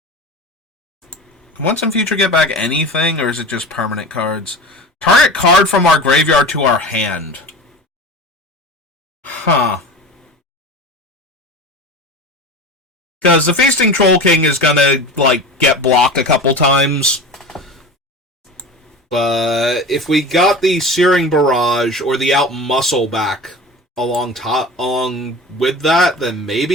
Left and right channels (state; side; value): normal; both; correlation 0.33